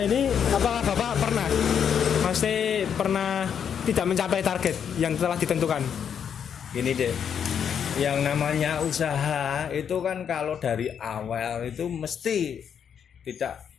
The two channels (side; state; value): right; quieter; 7.9 dB